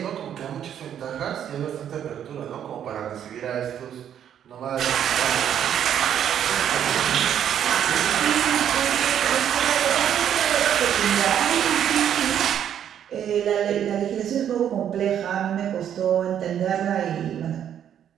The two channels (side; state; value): left; quieter; 9.6 dB